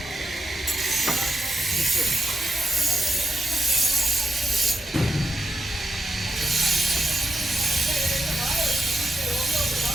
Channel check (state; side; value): normal; both; correlation 0.85